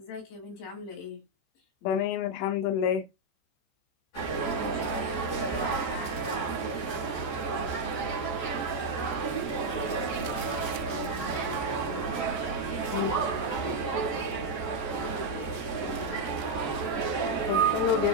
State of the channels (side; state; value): right; late; 14 ms